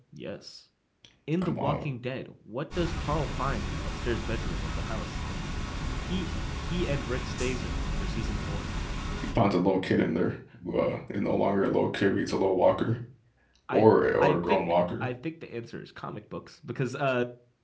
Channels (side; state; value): both; identical; correlation 1.00